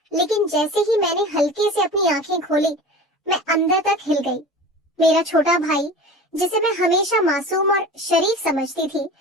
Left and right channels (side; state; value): both; normal; correlation 0.35